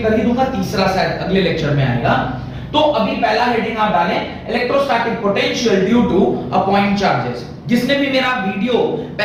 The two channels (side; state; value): both; identical; correlation 1.00